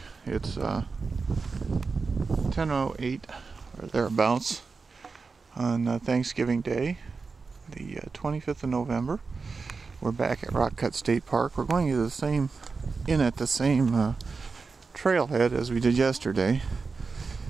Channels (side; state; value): left; quieter; 4.5 dB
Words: It's 10:08 or thereabouts on Thanksgiving Day, the 25th of November. We're back at Rock Cut State Park. We're going to the same trailhead as we did yesterday.